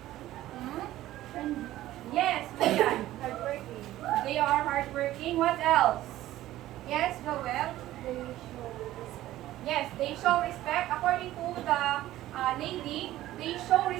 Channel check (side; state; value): left; quieter; 14.8 dB